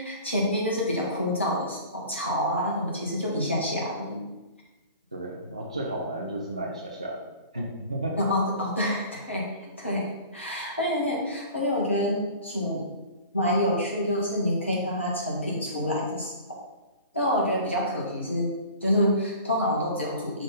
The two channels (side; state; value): both; inverted; correlation -0.42